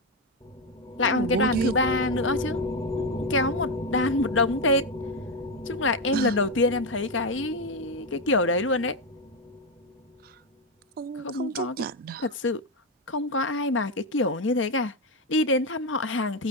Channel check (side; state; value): both; normal; correlation 0.08